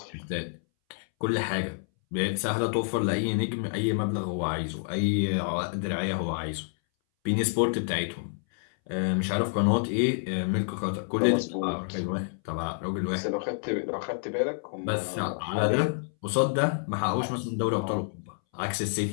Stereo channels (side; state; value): right; silent; 59 dB below the other